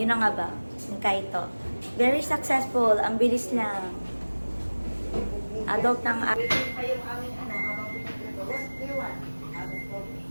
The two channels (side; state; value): both; inverted; correlation -1.00